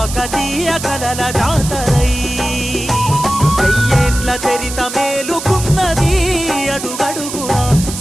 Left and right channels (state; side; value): noise; right; hiss, 8 dB below the sound